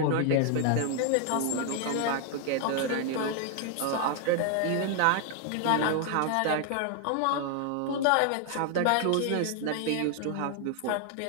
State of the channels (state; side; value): different; both; correlation 0.00